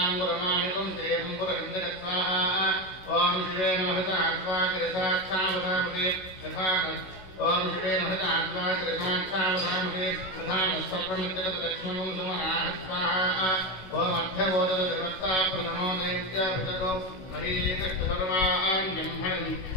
దేవం పురహందక స్వాహ. ఓం శివే నమః ఆత్మాకిరసాక్షావధామతే యథాన. ఓం శివే నమః ఆత్మాకిరసాక్షావధామతే యథాన సర్వమిత్రగత లక్ష్మణం సుమనాః స్వాహ. ఓం అర్ధవోదక దేవతా ప్రథమో దేవ్యాభిషగో మహీకృష్ణ సర్వాణ్యం హరిం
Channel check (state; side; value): late; right; 16 ms